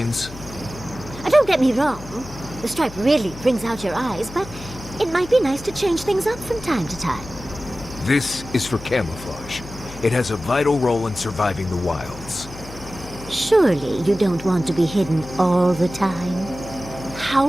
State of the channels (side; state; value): left; noise; hum, 15 dB below the sound